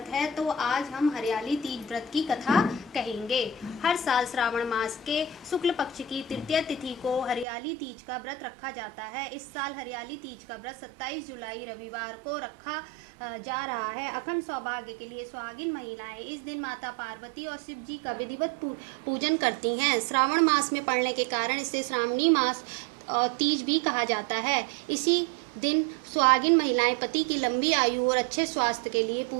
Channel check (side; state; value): left; drops out; at 7.5 s